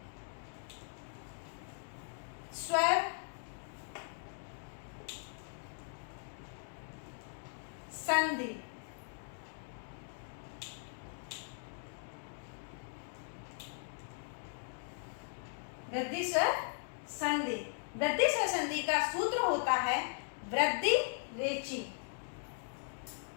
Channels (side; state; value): right; silent; digital silence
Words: स्वर संधि। वृद्धि स्वर संधि। वृद्धि स्वर संधि का सूत्र होता है वृद्धि रेची।